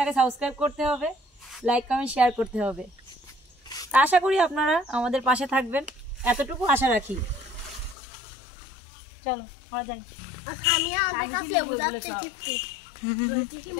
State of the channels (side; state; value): right; drops out; at 8.0 s